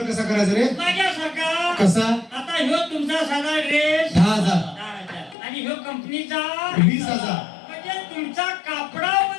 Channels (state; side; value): drops out; right; at 5.4 s